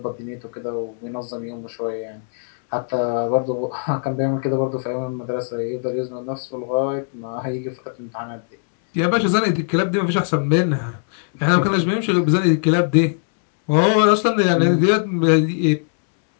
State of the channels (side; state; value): right; silent; 65 dB below the other